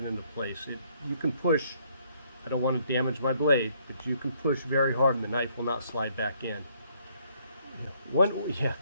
into place. You can push, I don't want to damage my blade, but you can push very hard and the knife will not slide back in.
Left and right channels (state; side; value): inverted; both; correlation -0.67